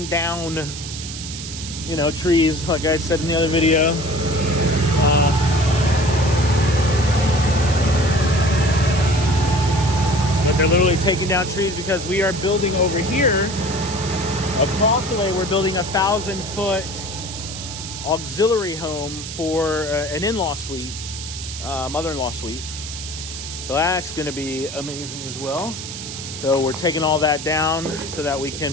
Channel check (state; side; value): noise; right; hiss, 9 dB below the sound